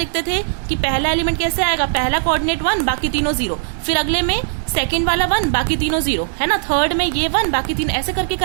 थे कि पहला एलिमेंट कैसे आएगा, पहला कोऑर्डिनेट 1 बाकी तीनों 0, फिर अगले में सेकंड वाला 1 बाकी तीनों 0, है ना, थर्ड में ये 1 बाकी 3, ऐसे करके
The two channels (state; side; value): silent; left; digital silence